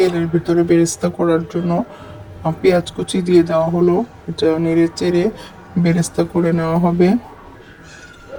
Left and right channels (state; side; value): identical; both; correlation 1.00